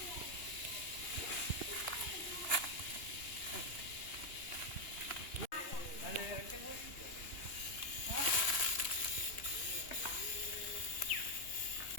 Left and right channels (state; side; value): late; right; 2.8 ms